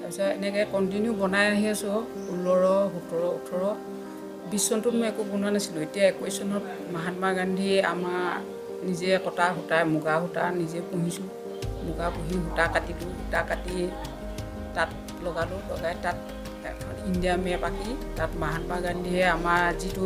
এনেকৈ কণ্টিনিউ বনাই আহি আছোঁ। 16, 17, 18, 20 চনটোত মই একো বনোৱা নাছিলোঁ। এতিয়া 21 চনত মহাত্মা গান্ধী আমাৰ নিজে কটা সূতা, মুগা সূতা নিজে পুহিছোঁ। মুগা পুহি সূতা কাটিলোঁ, সূতা কাটি তাত লগালোঁ, লগাই তাত এখন ইণ্ডিয়া মেপ আঁকি তাত মহাত্মা গান্ধীয়ে আমাৰ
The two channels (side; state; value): both; identical; correlation 1.00